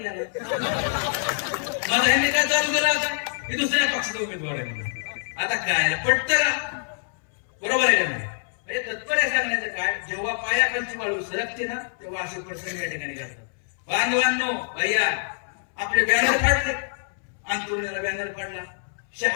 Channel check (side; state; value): right; silent; 62 dB below the other